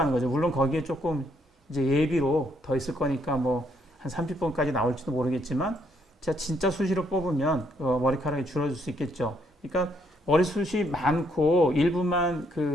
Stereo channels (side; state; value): both; normal; correlation 0.72